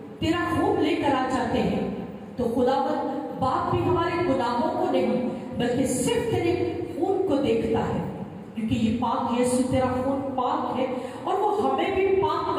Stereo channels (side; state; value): both; identical; correlation 1.00